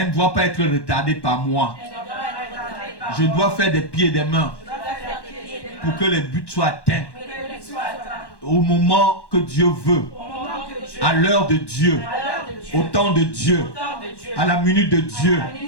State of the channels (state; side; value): late; right; 1.1 ms